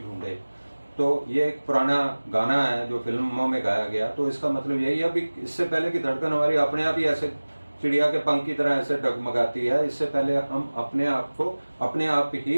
तो ये एक पुराना गाना है जो फिल्मों में गाया गया। तो इसका मतलब यही है, अभी इससे पहले की धड़कन हमारी अपने आप ही ऐसे चिड़िया के पंख की तरह ऐसे डगमगाती है, इससे पहले हम अपने आप को अपने आप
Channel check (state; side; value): inverted; both; correlation -1.00